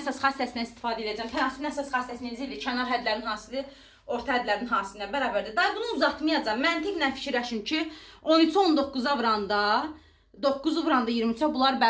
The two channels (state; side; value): identical; both; correlation 1.00